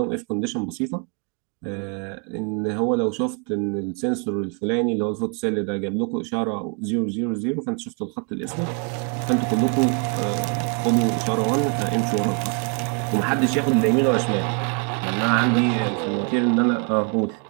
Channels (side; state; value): left; quieter; 35.8 dB